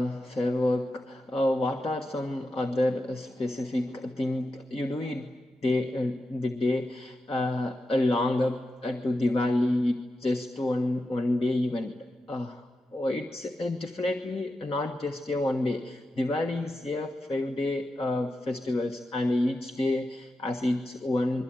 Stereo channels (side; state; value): both; normal; correlation 0.89